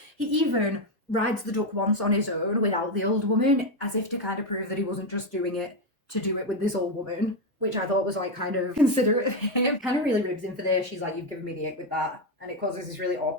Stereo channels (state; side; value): normal; both; correlation 0.07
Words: He even rides the duck once on his own without the old woman, as if to kind of prove that he wasn't just doing it to do it with this old woman, which I thought was like kind of considerate of him. Kind of really ribs him for this. She's like, you've given me the ick with that. And it causes this really